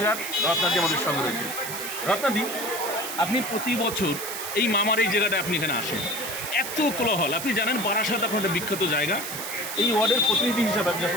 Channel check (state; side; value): noise; right; hiss, 7 dB below the sound